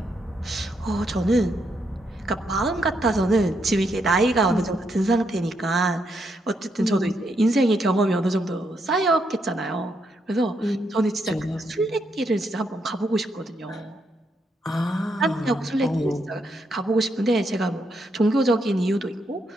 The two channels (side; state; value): both; normal; correlation 0.78